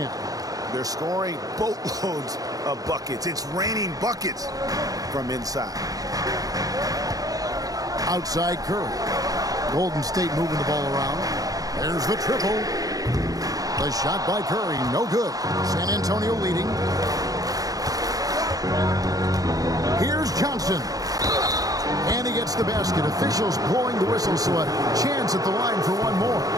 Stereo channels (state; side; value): late; left; 0.17 ms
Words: They're scoring boatloads of buckets. It's raining buckets from inside. Outside Curry. Golden State moving the ball around. There's the triple. The shot by Curry, no good. San Antonio leading. Here's Johnson. And he gets the basket. Officials blowing the whistle, so a chance at the line for one more.